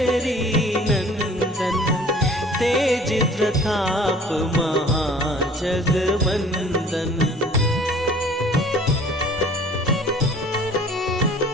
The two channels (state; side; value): normal; both; correlation 0.50